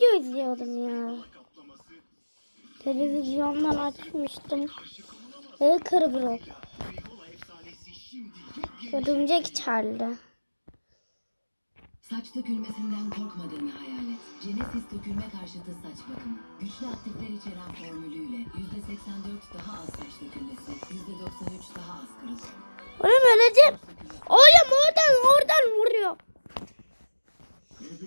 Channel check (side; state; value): both; inverted; correlation -1.00